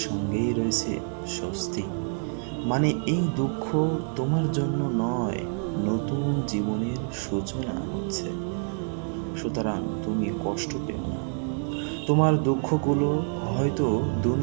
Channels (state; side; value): silent; left; 60 dB below the other